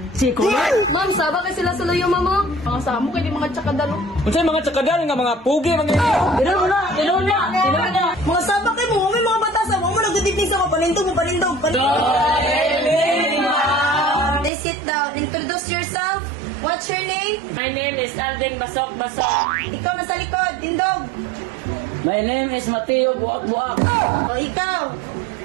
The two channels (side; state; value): left; drops out; at 14.5 s